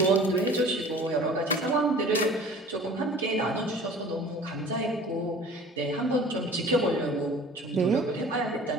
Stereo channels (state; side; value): normal; both; correlation 0.45